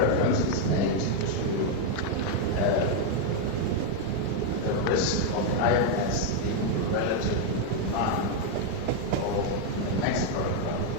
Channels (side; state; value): both; different; correlation 0.00